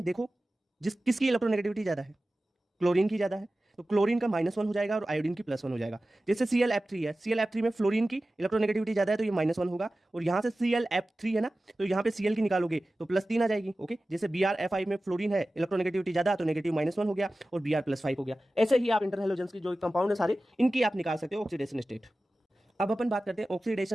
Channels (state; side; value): normal; both; correlation 0.96